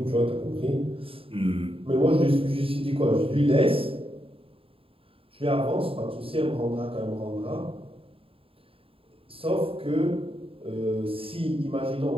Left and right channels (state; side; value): late; left; 0.27 ms